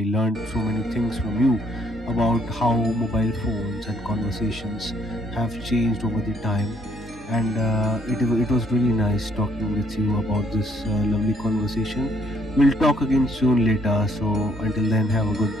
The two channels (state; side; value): normal; both; correlation 0.67